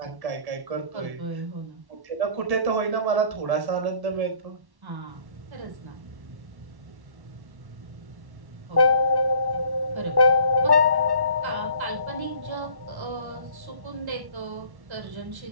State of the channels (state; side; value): late; left; 1.1 ms